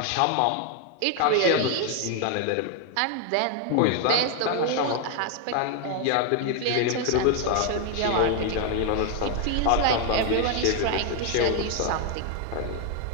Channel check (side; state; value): both; different; correlation 0.00